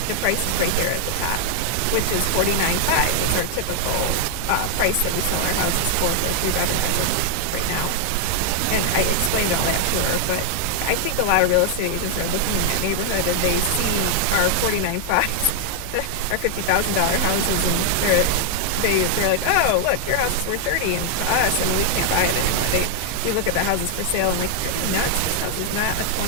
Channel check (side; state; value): both; different; correlation 0.00